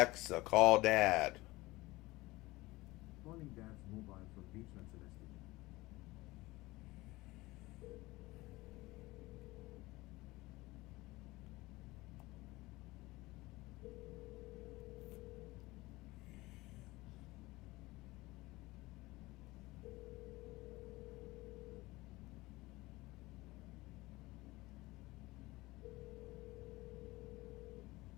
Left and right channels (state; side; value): quieter; right; 20.3 dB